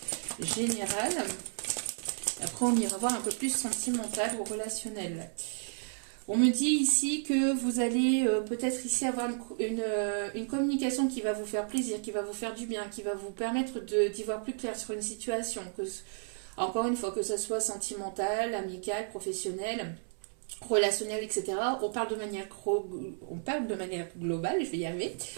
générale. Après, on ira voir un peu plus sentimental ou relationnel. On me dit ici que vous allez peut-être ici avoir une communication qui va vous faire plaisir, qui va vous faire du bien, qui va vous permettre d'y voir plus clair sur une situation. Encore une fois, que ce soit sentimental, amical, professionnel, relationnel, etc. On parle de manière globale, je vais y arriver.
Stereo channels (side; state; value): left; silent; 56 dB below the other